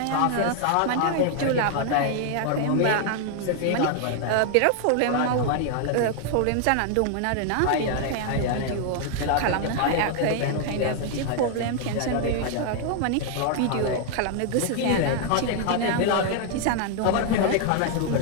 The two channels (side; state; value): both; different; correlation 0.00